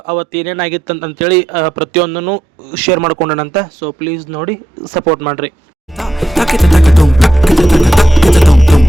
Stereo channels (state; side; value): normal; both; correlation 0.85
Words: ಅವತ್ತು ಏನೇನಾಗಿತ್ತು ಅಂತಂತೇಳಿ ಪ್ರತಿಯೊಂದನ್ನು ಶೇರ್ ಮಾಡ್ಕೊಂಡನಂತೆ. ಸೊ ಪ್ಲೀಸ್ ನೋಡಿ ಸಪೋರ್ಟ್ ಮಾಡಿರಿ.